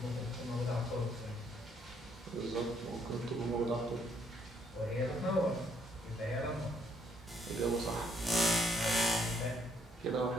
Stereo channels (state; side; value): normal; both; correlation 0.69